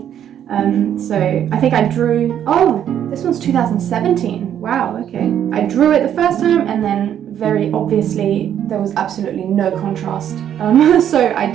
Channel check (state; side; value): quieter; left; 9.9 dB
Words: So I think I drew, oh, this one's 2017. Wow, okay. I drew it the first time, and then very obviously there was absolutely no contrast. So I